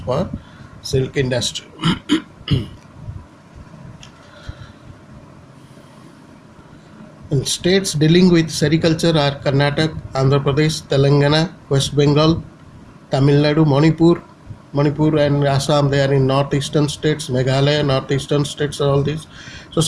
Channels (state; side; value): identical; both; correlation 1.00